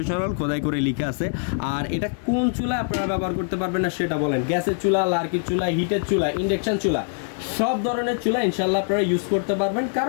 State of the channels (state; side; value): silent; right; digital silence